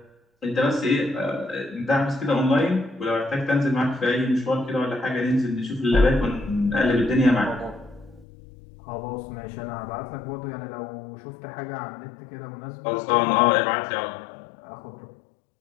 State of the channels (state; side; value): drops out; right; at 8.2 s